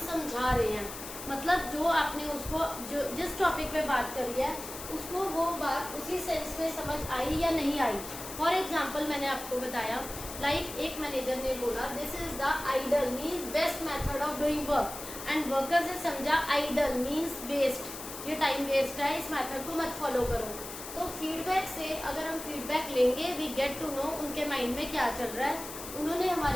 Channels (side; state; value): left; noise; hiss, 10 dB below the sound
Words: समझा रहे हैं। मतलब जो आपने उसको जो जिस टॉपिक पे बात करी है उसको वो बात उसी सेंस में समझ आई या नहीं आई। फॉर एग्जाम्पल मैंने आपको बताया लाइक एक मैनेजर ने बोला this is the ideal means best method of doing work, and workers ने समझा आइडल मीन्स वेस्ट, ये टाइम वेस्ट है, इस मेथड को मत फॉलो करो। तो फीडबैक से अगर हम फीडबैक लेंगे वी गेट टू नो उनके माइंड में क्या चल रहा है, उन्होंने